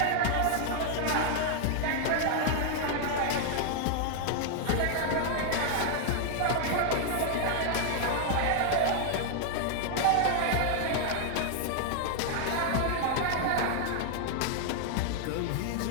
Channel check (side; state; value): both; different; correlation 0.00